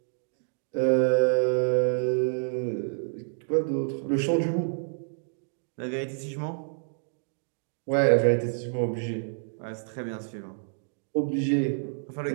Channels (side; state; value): left; silent; digital silence